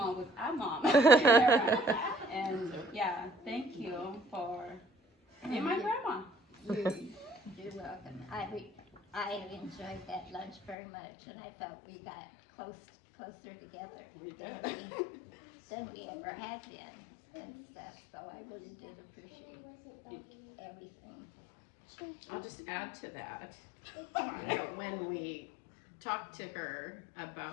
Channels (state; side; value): drops out; right; at 10.8 s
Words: with our mom. And yeah, thank you for being my grandma. You're welcome. I enjoyed that lunch very much, and I felt we got closer together than we ever had been and stuff. So I really did appreciate everything. I'll just add to that, that when we talked to her